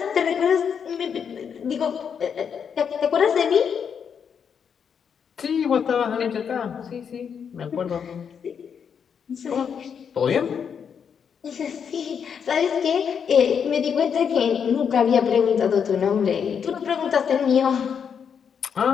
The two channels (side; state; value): right; quieter; 7.2 dB